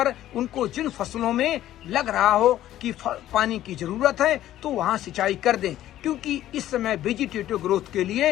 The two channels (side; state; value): right; quieter; 13.2 dB